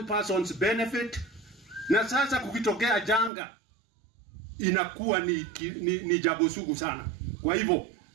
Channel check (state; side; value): drops out; left; at 3.3 s